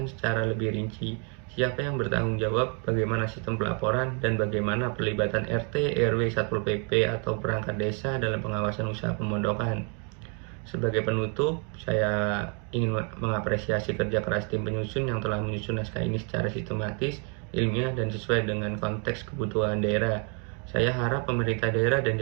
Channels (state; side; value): quieter; left; 37.7 dB